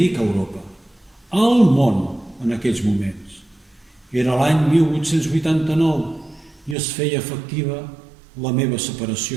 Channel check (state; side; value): drops out; left; at 6.8 s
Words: Europa? Al món en aquells moments. Era l'any 1889 i es feia efectiva la meva